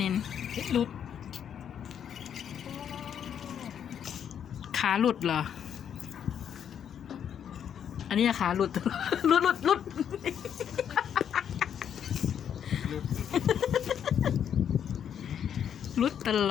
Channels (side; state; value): right; quieter; 8.7 dB